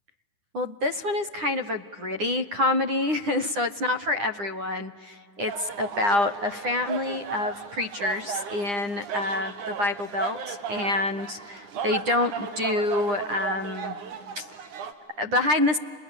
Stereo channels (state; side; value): late; left; 9.9 ms